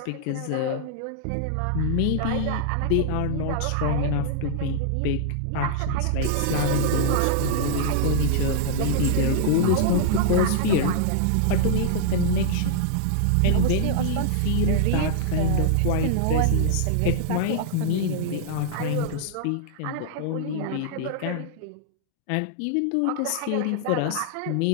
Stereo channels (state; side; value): different; both; correlation -0.01